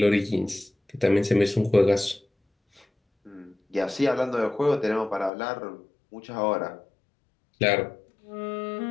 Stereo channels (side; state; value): right; drops out; at 5.3 s